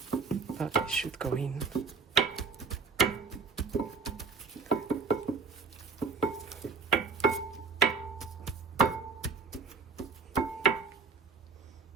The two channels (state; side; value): quieter; left; 4.8 dB